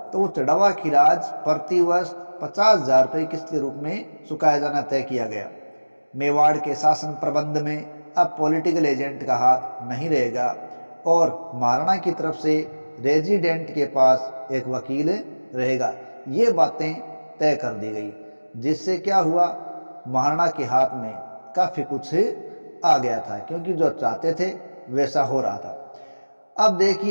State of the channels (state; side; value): inverted; both; correlation -1.00